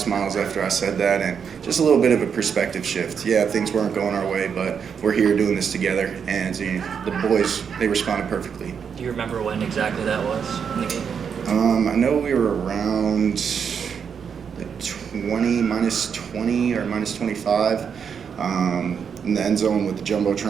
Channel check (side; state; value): left; quieter; 7.0 dB